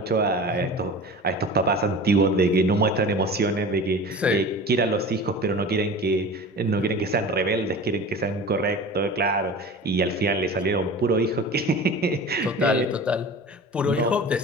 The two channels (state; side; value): normal; both; correlation 0.36